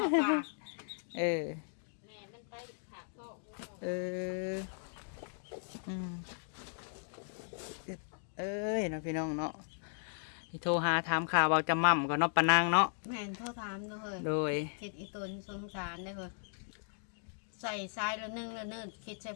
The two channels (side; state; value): right; silent; digital silence